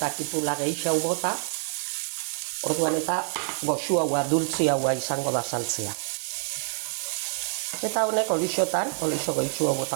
kipula gehiago bota, orduan eta goxu haua, dultzi haua izango da saltzea. Eta honek olixotan, olixo goitzu hau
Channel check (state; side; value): silent; left; digital silence